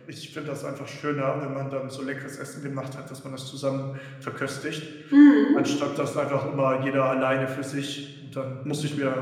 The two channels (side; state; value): both; identical; correlation 1.00